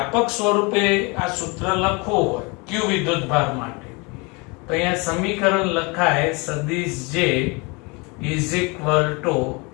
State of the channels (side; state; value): right; quieter; 28.8 dB